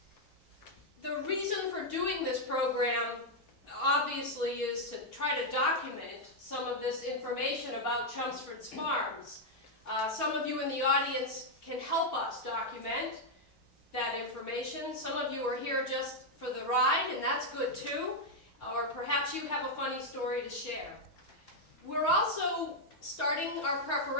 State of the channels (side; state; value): both; normal; correlation -0.01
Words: The reason for doing this program, obviously, is to try to document some of this information about Chelmsford's farms. Some of you in the audience can help us document that information. Some of you are here just for the ride, and that's good too. Or perhaps you have a funny story to share. We're also starting our